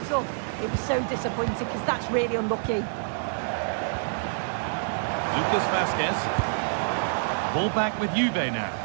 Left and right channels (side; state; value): left; silent; digital silence